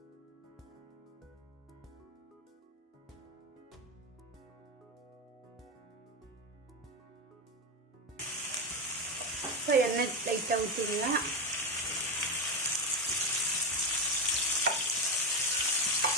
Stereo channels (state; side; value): normal; both; correlation 0.13